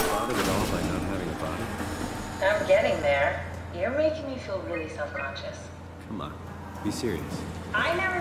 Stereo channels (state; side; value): identical; both; correlation 1.00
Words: bothered at all by not having a body? I'm getting there. You're making me feel really self-conscious. Come on, be serious. I